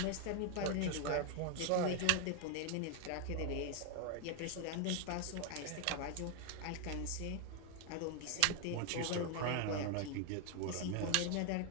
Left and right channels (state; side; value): different; both; correlation 0.01